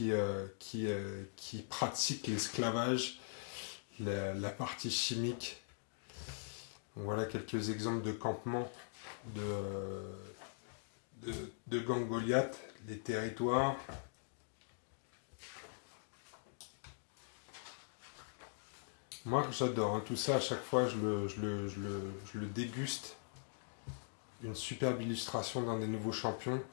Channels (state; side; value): silent; right; digital silence